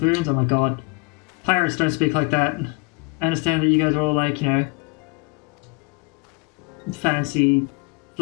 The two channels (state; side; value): quieter; right; 27.8 dB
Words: Oh my god. Pirates don't speak like that. I understand that you guys are all like, you know, fancy,